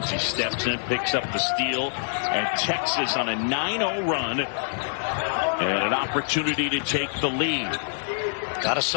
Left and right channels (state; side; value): silent; right; digital silence